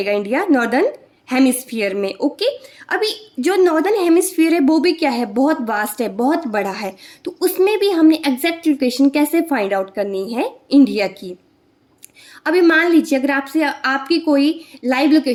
इंडिया? नॉर्दर्न हेमिस्फीयर में। ओके, अभी जो नॉर्दर्न हेमिस्फीयर है वो भी क्या है? बहुत वास्ट है, बहुत बड़ा है। तो उसमें भी हमने एग्जैक्ट लोकेशन कैसे फाइंड आउट करनी है इंडिया की। अभी मान लीजिए अगर आपसे आपकी कोई लाइव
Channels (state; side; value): identical; both; correlation 1.00